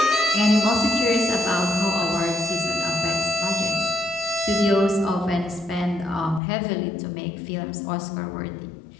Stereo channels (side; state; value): right; drops out; at 6.4 s